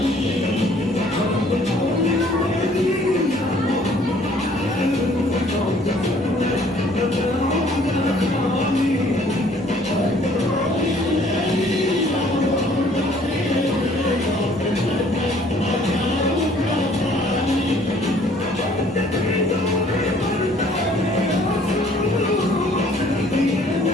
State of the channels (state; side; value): normal; both; correlation 0.58